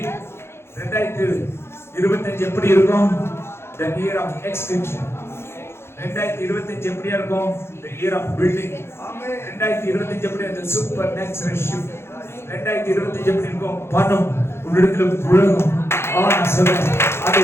2025 எப்படி இருக்கும்? The year of extension. 2025 எப்படியா இருக்கும்? The year of building. 2025 எப்படி அந்த சூப்பர் நேச்சுரல் ஷிஃப்ட். 2025 எப்படி இருக்கும்? பணம் உன்னிடத்துல புழங்கும். நான் சொல்றேன் அது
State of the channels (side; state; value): right; late; 0.12 ms